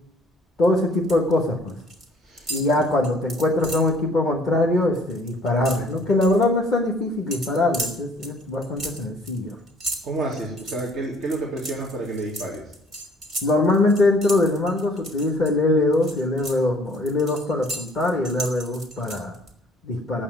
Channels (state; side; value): normal; both; correlation 0.57